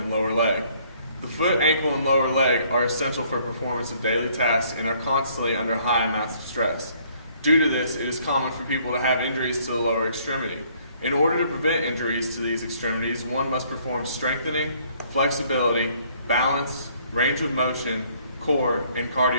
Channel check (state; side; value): inverted; both; correlation -0.63